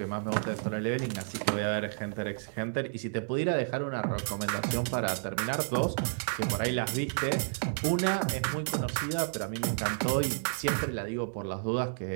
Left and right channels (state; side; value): silent; left; digital silence